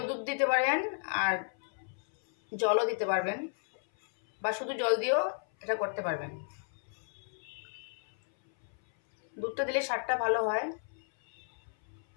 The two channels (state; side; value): silent; right; 56 dB below the other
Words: দুধ দিতে পারেন, আর জলও দিতে পারবেন, বা শুধু জল দিয়েও এটা করতে পারবেন। দুধটা দিলে স্বাদটা ভালো হয়।